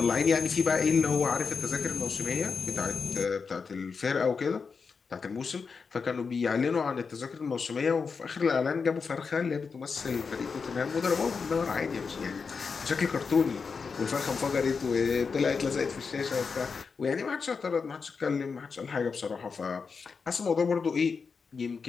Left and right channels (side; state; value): right; quieter; 5.3 dB